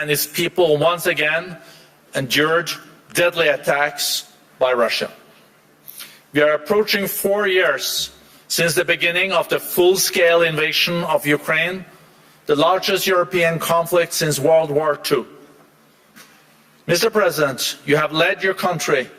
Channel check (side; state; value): both; identical; correlation 1.00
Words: its people once again endured deadly attacks by Russia. We are approaching 4 years since the beginning of the full-scale invasion of Ukraine, the largest European conflict since World War II. Mr. President, you have led your country